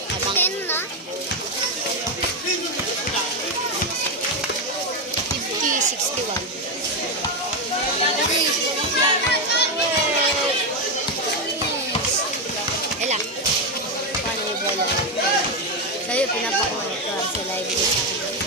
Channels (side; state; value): both; normal; correlation 0.07